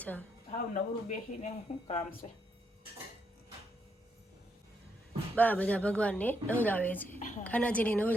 હાવ નવરું બેસીને શું કામ છે. બા બધા ભગવાનને નવરાવે છે. ખાનાજીને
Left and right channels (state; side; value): normal; both; correlation 0.78